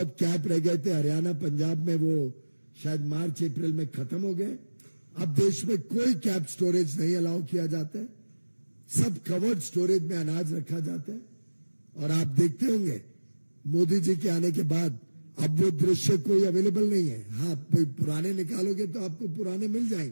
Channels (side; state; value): both; inverted; correlation -1.00